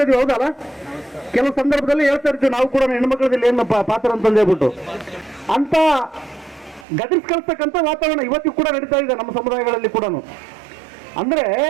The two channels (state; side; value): drops out; left; at 6.9 s